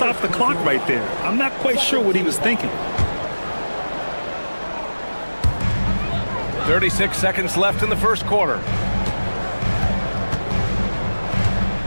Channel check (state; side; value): inverted; both; correlation -1.00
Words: the clock right there. I'm not quite sure what he was thinking. 36 seconds left in the first quarter.